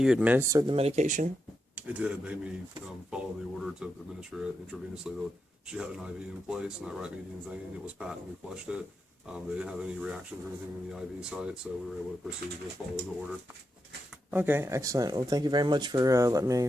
administered the medication? It did. It made me follow the order to administer it intravenously. She had an IV in place, and that right median vein, it was patent. We flushed it. They didn't have any reactions or anything in the IV site, so we were able to proceed with following the order. Okay, excellent. Well, thank you very much for letting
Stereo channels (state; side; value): normal; both; correlation 0.85